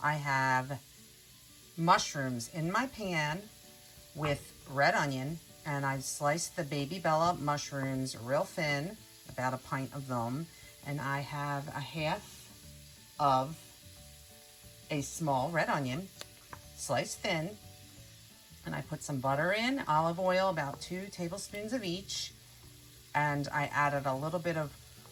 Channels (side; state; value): both; identical; correlation 1.00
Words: I have mushrooms in my pan with red onion, and I've sliced the Baby Bella mushrooms real thin, about a pint of them, and I have a half of a small red onion, sliced thin, and I put some butter in, olive oil, about 2 tablespoons of each, and I added a little bit of